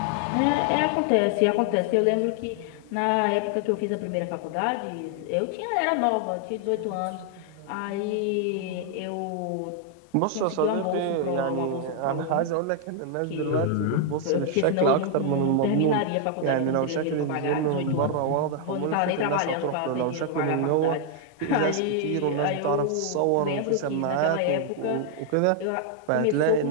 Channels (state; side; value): different; both; correlation 0.00